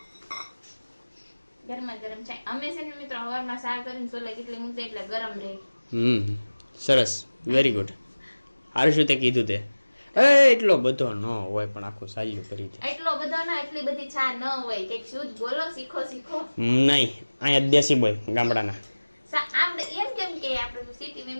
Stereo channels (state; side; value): inverted; both; correlation -1.00